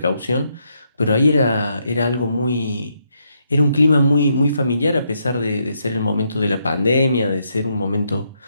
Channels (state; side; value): inverted; both; correlation -0.77